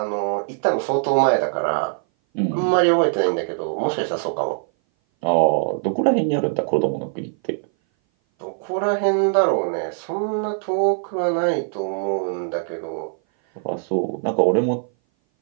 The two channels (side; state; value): left; silent; 58 dB below the other